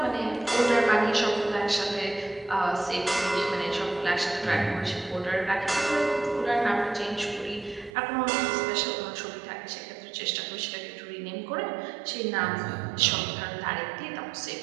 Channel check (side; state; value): left; drops out; at 7.9 s